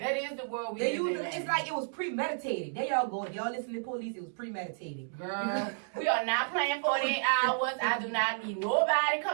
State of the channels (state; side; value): silent; left; digital silence